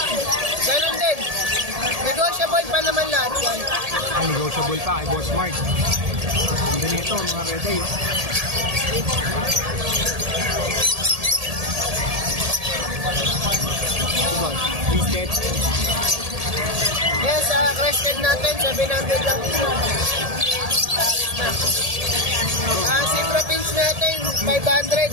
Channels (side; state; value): left; late; 1.7 ms